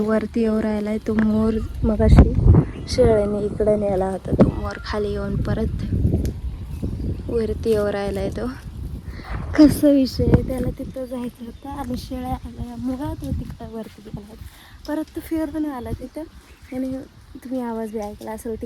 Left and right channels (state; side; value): identical; both; correlation 1.00